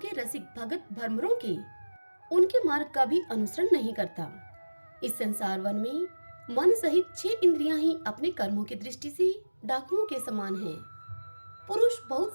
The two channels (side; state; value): both; inverted; correlation -1.00